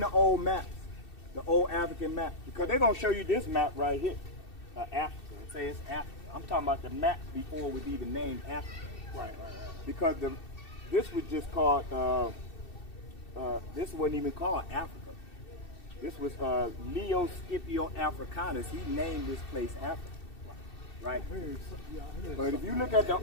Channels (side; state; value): right; late; 2.7 ms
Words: the old maps? The old African map? Because they're gonna show you this map right here. Africa. It says Africa. I'm talking about the map before it was even named Africa. Right. Because this was just called, this wasn't even called Africa. This was Leo Scipio Africanus. He named this place Africa. Right? But if you look at the